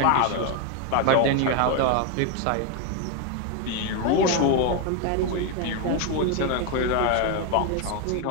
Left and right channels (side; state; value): both; different; correlation 0.01